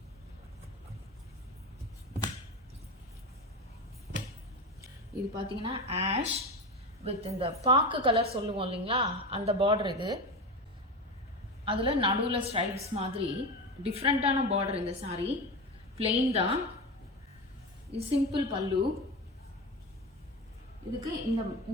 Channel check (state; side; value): normal; both; correlation 0.23